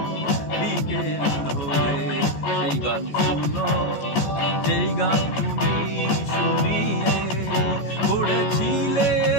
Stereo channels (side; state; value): right; late; 14 ms